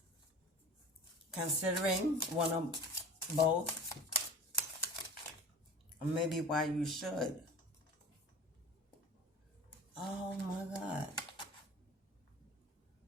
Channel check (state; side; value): normal; both; correlation 0.39